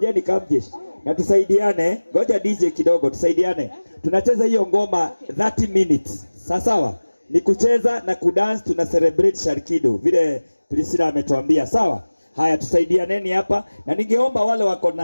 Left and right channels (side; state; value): both; inverted; correlation -1.00